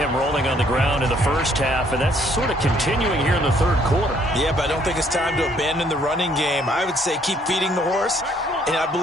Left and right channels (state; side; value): normal; both; correlation 0.65